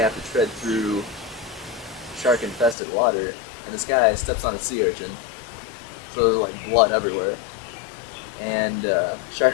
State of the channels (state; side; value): drops out; right; at 2.8 s